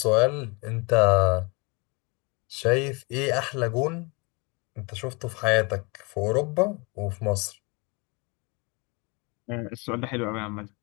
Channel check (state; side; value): quieter; right; 29.3 dB